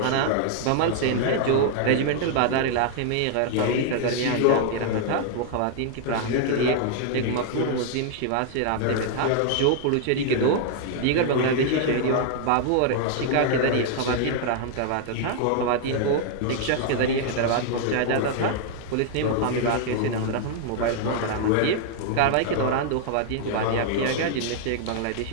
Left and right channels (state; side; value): different; both; correlation 0.00